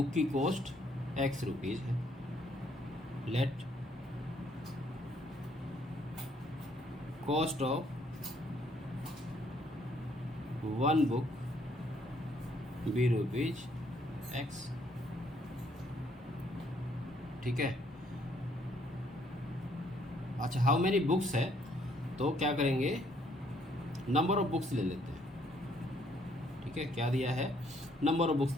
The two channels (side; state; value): both; normal; correlation 0.67